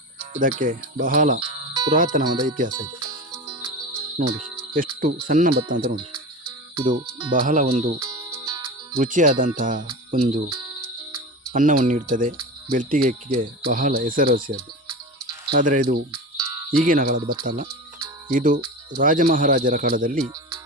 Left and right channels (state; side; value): normal; both; correlation 0.28